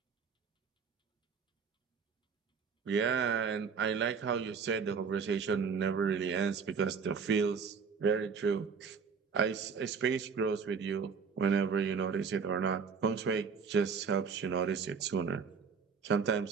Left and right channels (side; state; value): left; quieter; 5.9 dB